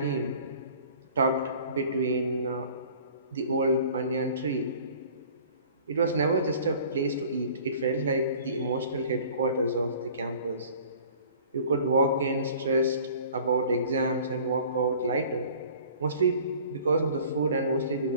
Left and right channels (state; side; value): inverted; both; correlation -0.49